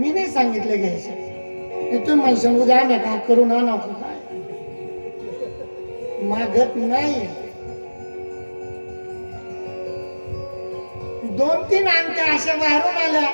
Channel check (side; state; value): both; inverted; correlation -1.00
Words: नाही सांगितले घ्यायचे. तुम्ही म्हणशाल उद्या आणा का करून आणा, काय मागत नाही. 2-3 अंगठ्या अशा बाहेरून आल्या,